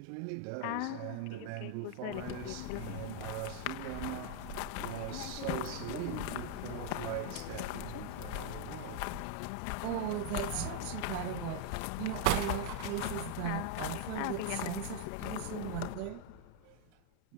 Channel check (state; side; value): different; both; correlation 0.00